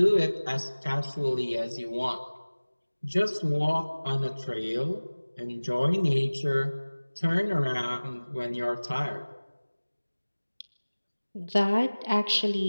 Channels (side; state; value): both; inverted; correlation -1.00